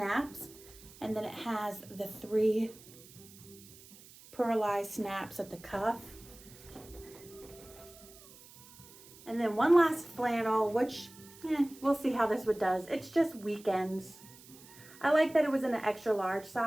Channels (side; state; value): right; noise; hiss, 21 dB below the sound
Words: And then it has the 3 pearlized snaps at the cuff. And then one last flannel, which we'll see how this one does. It's just weekends. I like that it was in an extra large